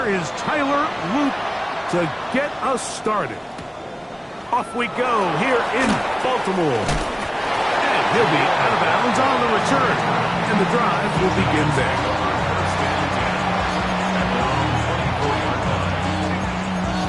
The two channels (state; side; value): identical; both; correlation 1.00